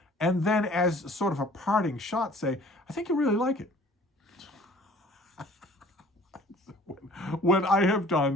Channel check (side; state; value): both; normal; correlation 0.52